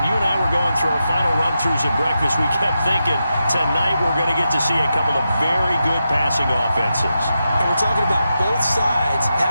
you and I were going through our final run-throughs at breakfast, we kept thinking tonight we're going to get to see a couple of very good passing offenses. And we're talking about both sides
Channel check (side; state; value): both; inverted; correlation -0.88